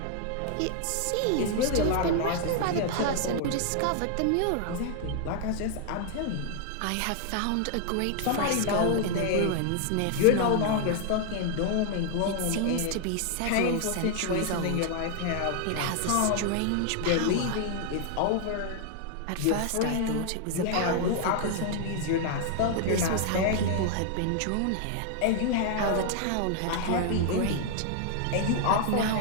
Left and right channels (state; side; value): different; both; correlation 0.00